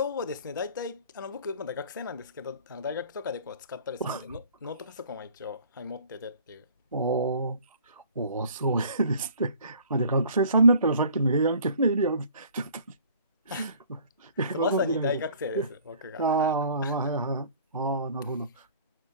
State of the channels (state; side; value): inverted; both; correlation -0.52